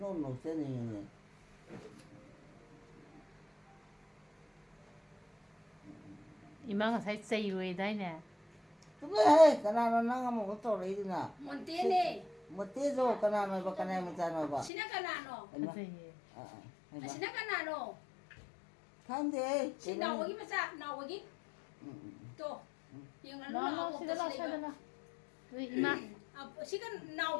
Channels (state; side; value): drops out; right; at 14.7 s